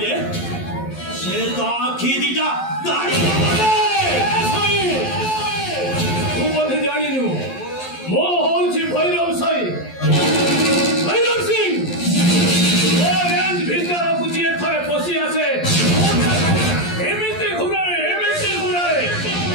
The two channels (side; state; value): right; late; 11 ms